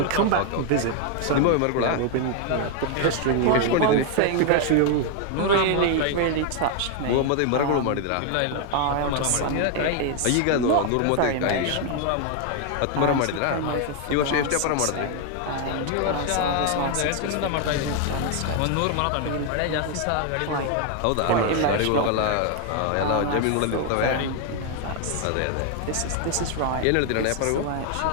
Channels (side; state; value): both; different; correlation 0.00